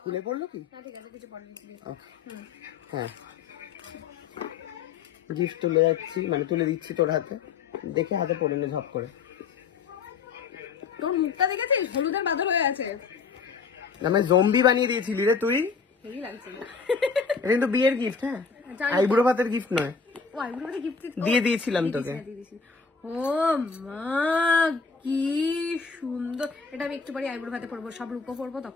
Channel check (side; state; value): right; quieter; 5.3 dB